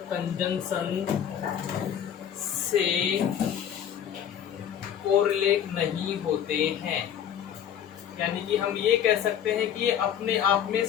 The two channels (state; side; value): quieter; right; 9.3 dB